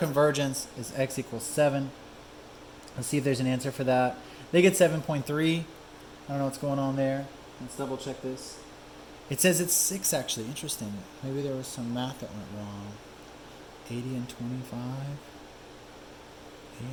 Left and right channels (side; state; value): both; identical; correlation 1.00